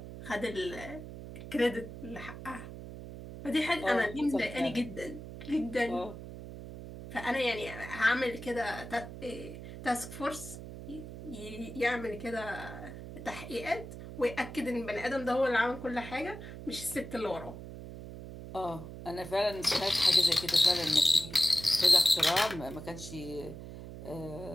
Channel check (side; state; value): right; noise; hum, 11 dB below the sound